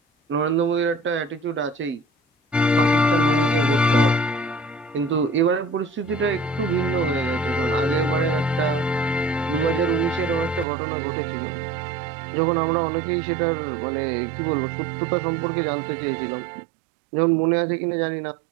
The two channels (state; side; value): drops out; left; at 10.7 s